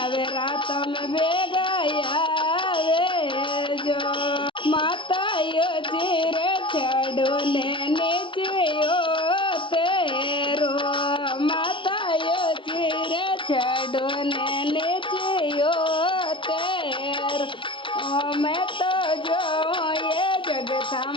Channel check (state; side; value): late; right; 0.24 ms